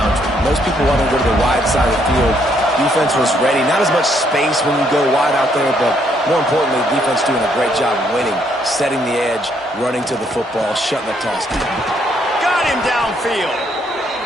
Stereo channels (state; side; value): normal; both; correlation 0.71